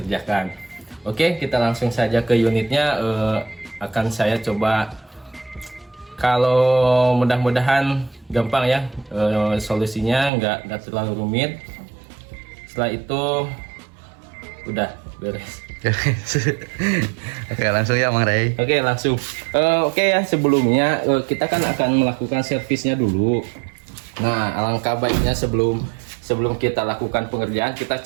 Oke, kita langsung saja ke unitnya. Akan saya coba, kalau mudah-mudahan gampang ya solusinya, nggak terlalu rumit. Setelah itu udah beres. Oke, langsung ya Mang Ray. Oke, langsung. Oke ya, sebelumnya kita kan akan melakukan servisnya dulu. Nah, alangkah baiknya sebelum kita lakukan pengerjaan, kita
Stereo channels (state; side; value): drops out; left; at 10.3 s